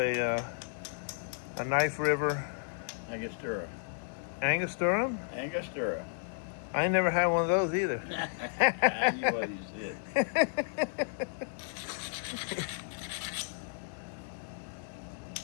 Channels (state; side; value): silent; right; 56 dB below the other